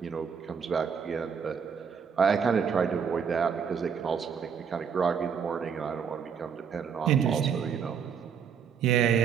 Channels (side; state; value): left; quieter; 7.0 dB